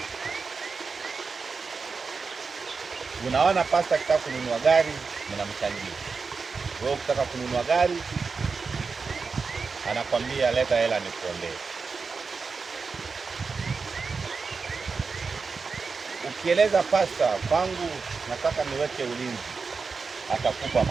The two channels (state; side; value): quieter; left; 4.8 dB